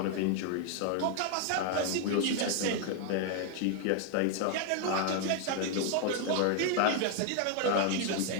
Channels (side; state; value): both; different; correlation 0.00